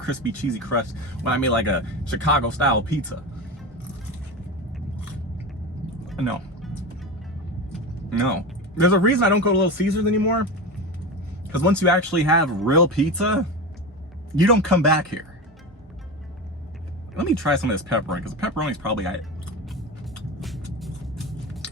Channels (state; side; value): normal; both; correlation 0.24